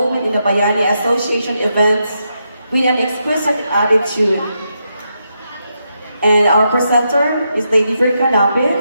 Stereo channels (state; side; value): inverted; both; correlation -0.83